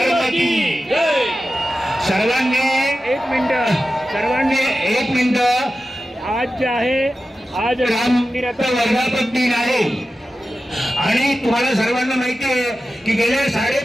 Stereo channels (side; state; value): both; normal; correlation 0.93